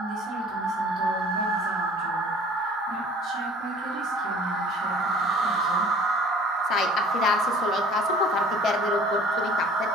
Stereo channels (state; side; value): normal; both; correlation 0.50